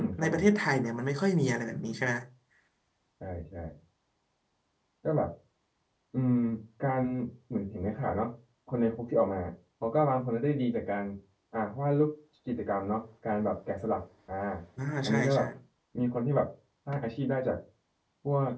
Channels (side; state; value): both; identical; correlation 1.00